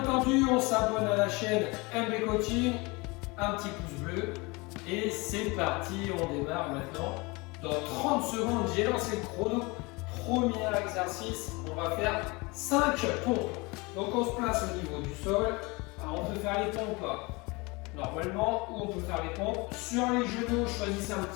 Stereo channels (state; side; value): quieter; right; 25.8 dB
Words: on s'abonne à la chaîne MB Coaching, un petit pouce bleu et c'est parti, on démarre maintenant. Dans 30 secondes, j'ai lancé le chrono. Premier exercice, on va faire 5 pompes. Donc on se place au niveau du sol. Alors on peut faire les pompes normalement ou on peut faire les pompes sur les genoux. Choisissez un